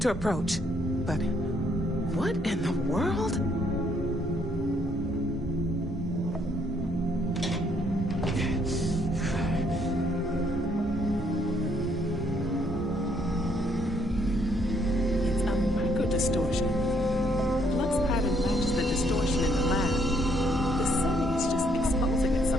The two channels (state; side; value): normal; both; correlation 0.69